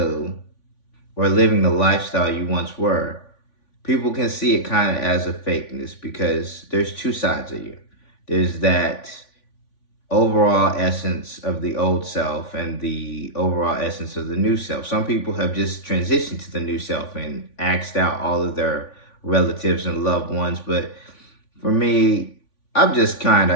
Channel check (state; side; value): late; right; 3.5 ms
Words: or living the lifestyle you once were, people can see it kind of as a fakeness because there's two sides of you. There's that overall essence of the old self and the overall essence of the new self. Some people have just transitioned to the new self and axed out all of their relatives and loved ones. But for me, I'm just kind